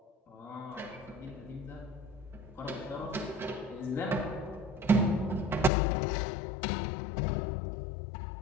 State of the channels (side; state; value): right; drops out; at 5.7 s